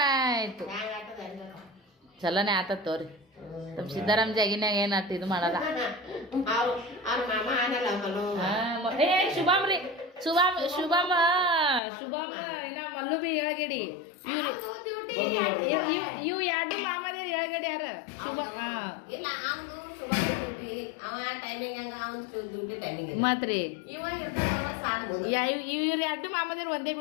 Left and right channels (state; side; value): drops out; right; at 11.8 s